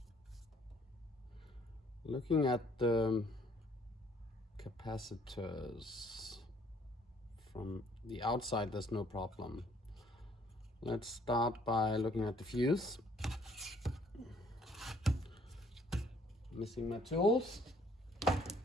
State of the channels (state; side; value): normal; both; correlation 0.62